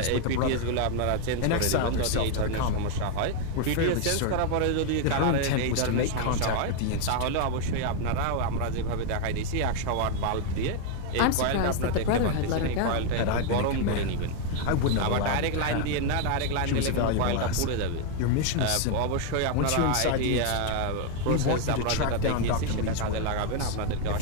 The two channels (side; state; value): both; different; correlation 0.01